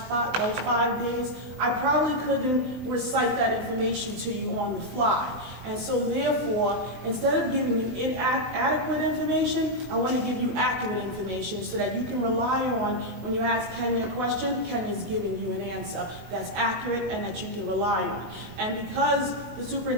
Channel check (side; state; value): left; late; 23 ms